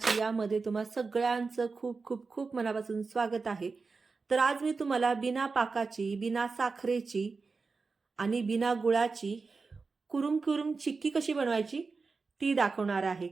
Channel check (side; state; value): left; quieter; 4.4 dB